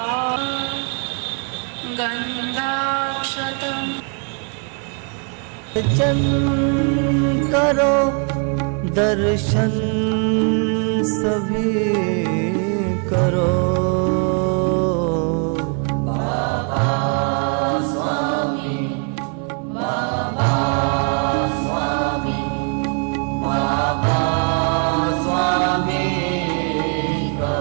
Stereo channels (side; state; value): left; quieter; 39.0 dB